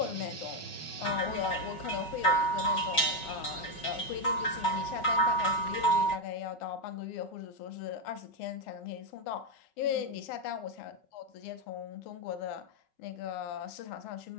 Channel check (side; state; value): right; late; 5.4 ms